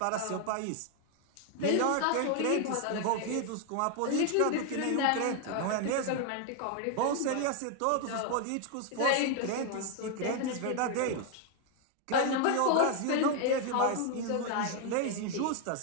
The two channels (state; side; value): different; both; correlation 0.01